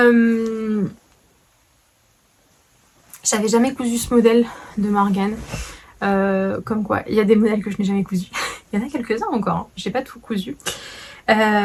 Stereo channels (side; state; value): both; identical; correlation 1.00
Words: J'avais jamais cousu ce modèle de Morgane. Comme quoi, il y a des modèles que je n'ai jamais cousus. Il y en a quelques-uns encore, hein. J'ai pas tout cousu.